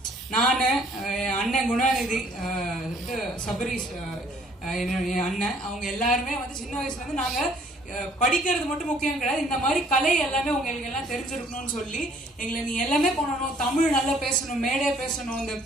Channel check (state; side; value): normal; both; correlation 0.60